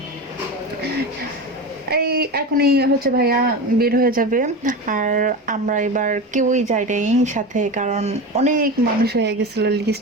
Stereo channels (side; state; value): both; normal; correlation 0.25